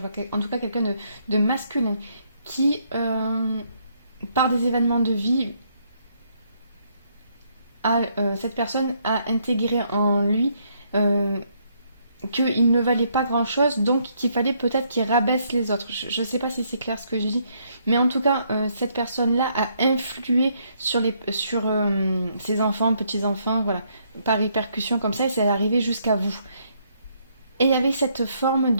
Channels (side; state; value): both; inverted; correlation -0.71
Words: vois en tout cas quelqu'un de masculin, qui, par des événements de vie, cette personne a intégré en lui qu'il ne valait pas grand-chose, donc qu'il fallait peut-être qu'il rabaisse les autres. Je ne sais pas si c'est clair ce que je dis, mais en tout cas, cette personne-là a influé sur ses enfants, petits-enfants, voilà, par répercussion comme ça, et c'est arrivé jusqu'à vous. Et il y avait cette forme